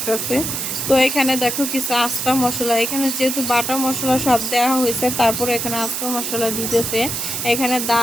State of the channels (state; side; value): noise; right; hiss, 3 dB below the sound